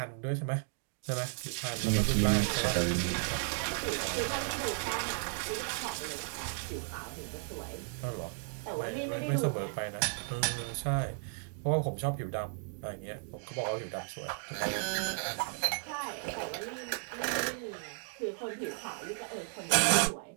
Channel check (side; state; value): left; silent; 55 dB below the other